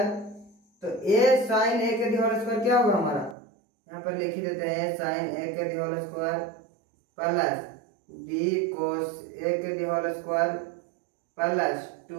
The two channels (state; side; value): drops out; left; at 3.4 s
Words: तो a sin a के होल स्क्वायर क्या होगा हमारा, यहाँ पर लिख ही देते हैं साइन ए के whole square plus B cos A के होल स्क्वायर प्लस